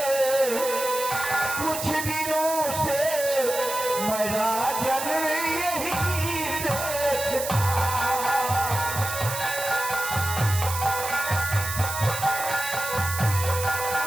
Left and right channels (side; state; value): right; noise; hiss, 6 dB below the sound